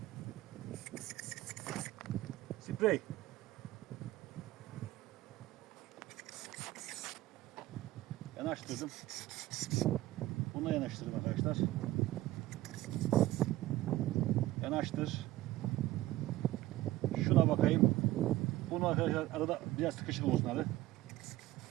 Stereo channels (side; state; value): left; quieter; 16.4 dB